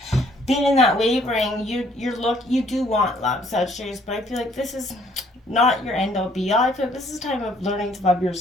been in that wavering. You do want love, Sagittarius, but I feel like this is not your end all be all. I feel like this is a time of learning to love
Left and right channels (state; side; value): normal; both; correlation 0.63